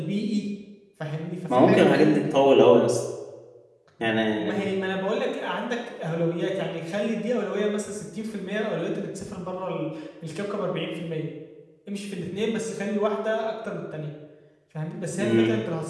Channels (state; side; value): identical; both; correlation 1.00